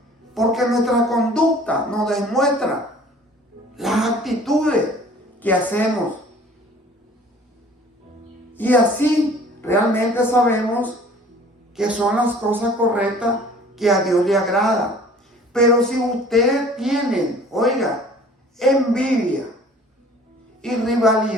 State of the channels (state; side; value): normal; both; correlation 0.50